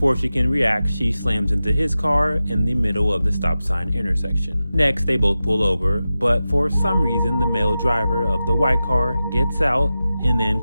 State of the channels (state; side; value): inverted; both; correlation -0.93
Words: she can react, she slams into his car in the middle of the stop sign intersection. Next, they both pull over, but for some reason, the male driver of the white car gets out and then